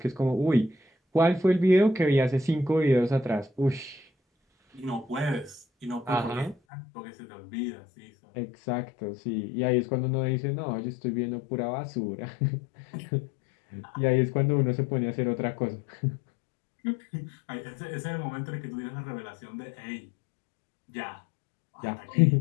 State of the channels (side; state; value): right; drops out; at 6.6 s